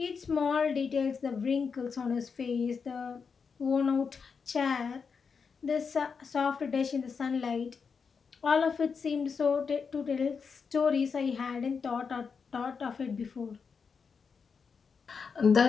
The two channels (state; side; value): quieter; right; 5.7 dB